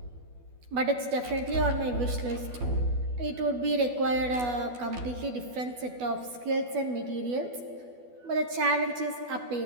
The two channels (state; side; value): late; left; 12 ms